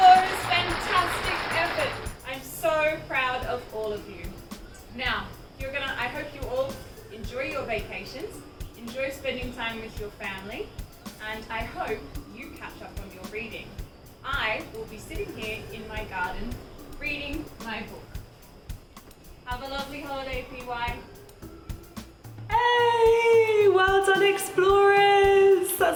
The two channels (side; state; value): both; identical; correlation 1.00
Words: fantastic effort. I'm so proud of all of you. Now, I hope you all enjoy your vacations, enjoy spending time with your family, and I hope you catch up on your reading. I will be sitting here in my garden reading my book. Have a lovely holiday, PY. Hey! Well done, Explorers!